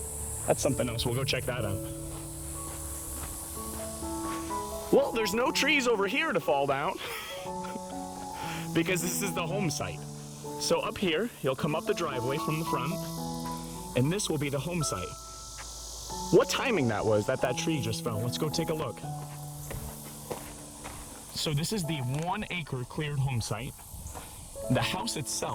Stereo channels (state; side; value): identical; both; correlation 1.00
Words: That's something else. We'll go check that out. Well, there's no trees over here to fall down because this is the home site. So up here, you'll come up the driveway from the front, and this will be the home site. What timing that was that tree just fell. Let's go take a look. So this is the 1 acre cleared home site. The house